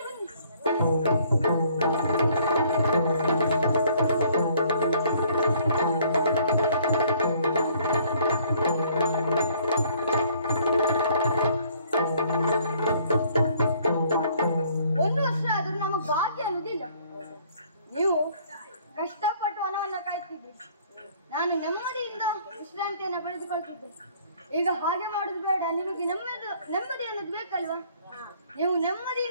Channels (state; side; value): inverted; both; correlation -0.60